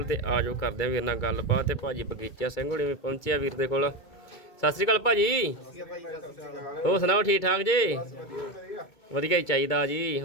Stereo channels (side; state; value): right; late; 2.2 ms